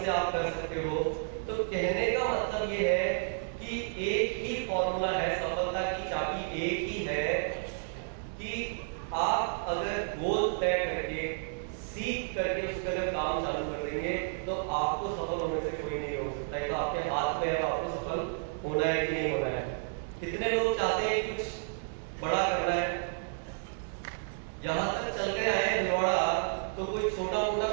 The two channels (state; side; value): silent; left; 57 dB below the other